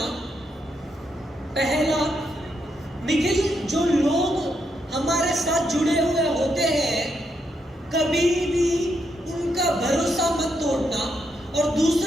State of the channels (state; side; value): normal; both; correlation 0.79